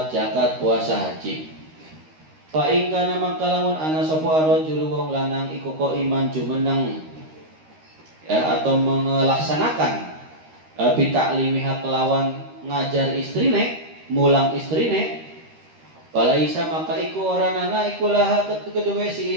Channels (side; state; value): left; late; 13 ms